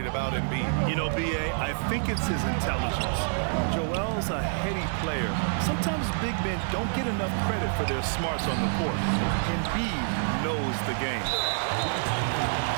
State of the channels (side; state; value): left; silent; digital silence